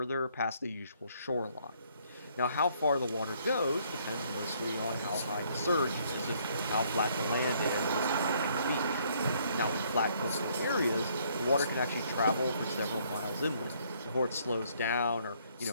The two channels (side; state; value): both; inverted; correlation -0.66